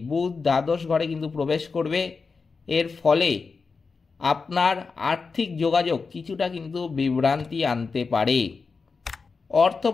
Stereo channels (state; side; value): quieter; right; 4.7 dB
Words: বুধ দ্বাদশ ঘরে কিন্তু প্রবেশ করবে। এর ফলে আপনার আর্থিক যোগাযোগ কিছুটা কিন্তু বিভ্রান্তি আনতে পারে। অর্থ